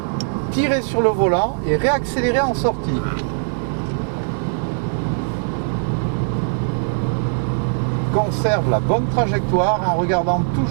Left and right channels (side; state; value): left; silent; digital silence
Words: tirer sur le volant et réaccélérer en sortie. Conserve la bonne trajectoire en regardant